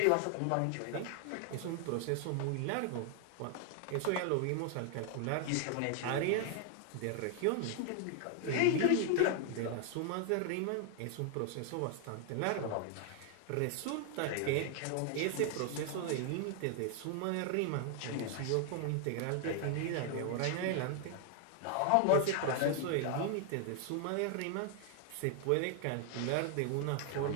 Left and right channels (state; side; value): different; both; correlation 0.00